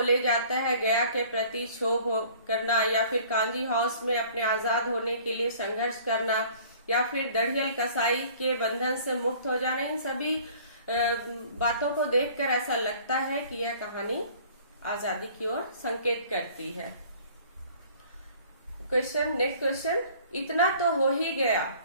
जाता है, गया के प्रति क्षोभ करना या फिर कांजी हाउस में अपने आजाद होने के लिए संघर्ष करना या फिर दढ़ियल कसाई के बंधन से मुक्त हो जाना, इन सभी बातों को देखकर ऐसा लगता है कि यह कहानी आजादी की ओर संकेत करती है। नेक्स्ट क्वेश्चन, इतना तो हो ही गया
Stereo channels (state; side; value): inverted; both; correlation -0.51